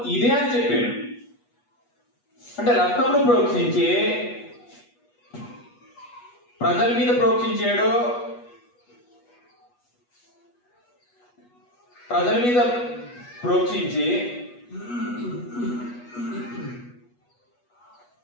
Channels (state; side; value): late; right; 8.2 ms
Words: ఇదే అని చెప్పాడు. అంటే రక్తమును ప్రోక్షించి ప్రజల మీద ప్రోక్షించాడు. ప్రజల మీద ప్రోక్షించి